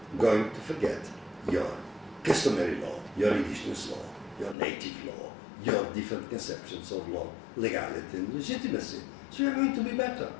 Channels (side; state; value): right; drops out; at 4.5 s